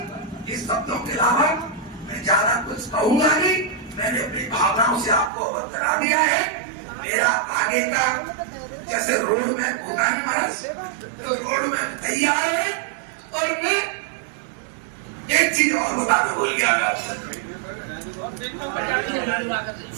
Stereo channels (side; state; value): left; drops out; at 5.3 s